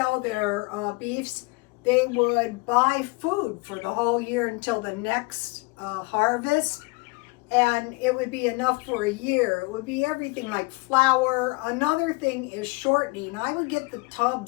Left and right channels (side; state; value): right; quieter; 28.0 dB